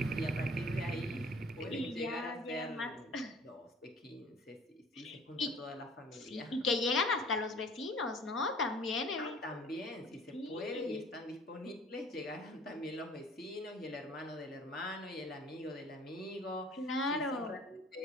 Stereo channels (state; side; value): normal; both; correlation 0.49